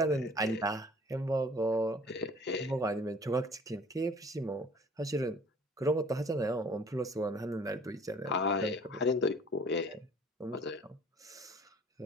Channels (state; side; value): normal; both; correlation 0.51